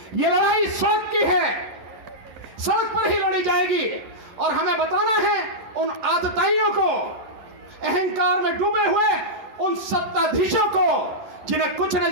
यह लड़ाई सड़क की है, सड़क पर ही लड़ी जाएगी। और हमें बताना है उन आतताइयों को, अहंकार में डूबे हुए उन सत्ताधीशों को, जिन्हें कुछ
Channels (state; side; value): late; left; 11 ms